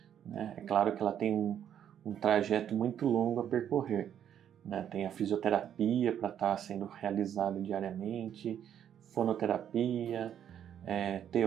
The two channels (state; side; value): quieter; left; 9.6 dB